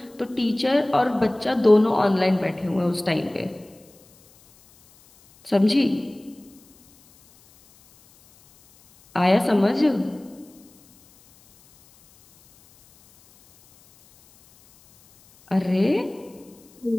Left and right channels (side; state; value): left; noise; hiss, 29 dB below the sound